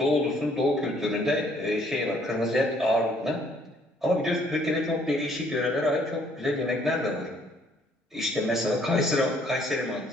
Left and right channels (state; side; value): normal; both; correlation 0.63